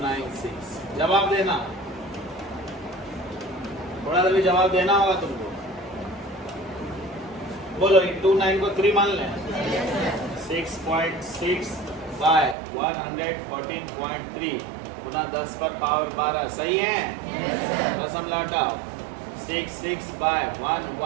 जवाब देना, थोड़ा सा भी जवाब देना होगा तुमको। बोलो 29 को 3 मान लें। 6.6 बाय 114.3 गुना 10 पर पावर 12 सही है। दशम लौटाओ। 6 बाय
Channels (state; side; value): drops out; left; at 12.6 s